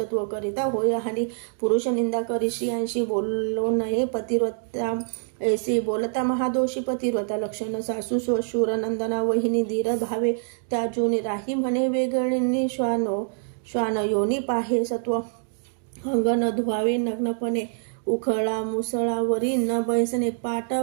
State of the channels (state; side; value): silent; left; digital silence